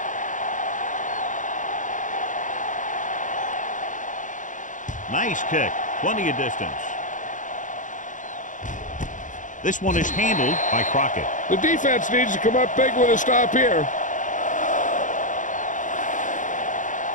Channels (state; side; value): late; right; 0.37 ms